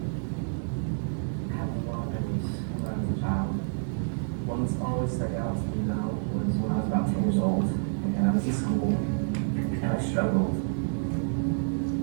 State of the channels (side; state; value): left; silent; digital silence